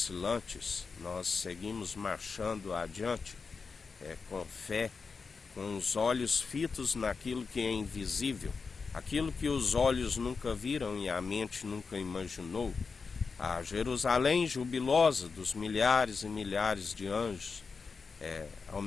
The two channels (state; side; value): quieter; right; 4.9 dB